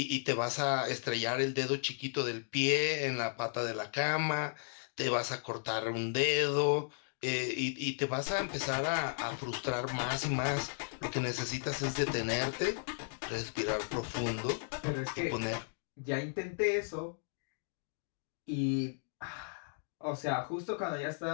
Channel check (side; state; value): right; silent; digital silence